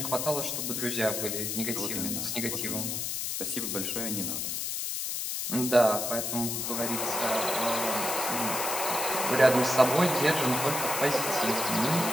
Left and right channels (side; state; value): left; noise; hiss, 2 dB below the sound